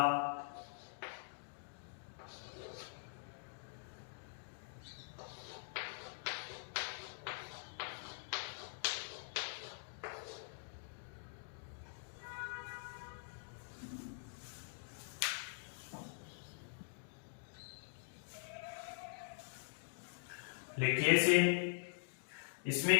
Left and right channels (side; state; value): right; silent; digital silence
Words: लिखिए इसे। इसमें